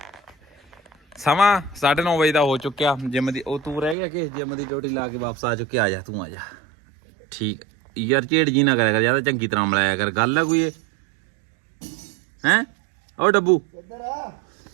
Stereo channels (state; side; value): drops out; left; at 4.0 s